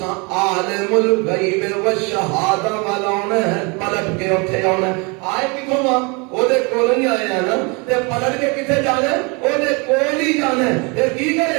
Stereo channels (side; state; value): left; quieter; 30.2 dB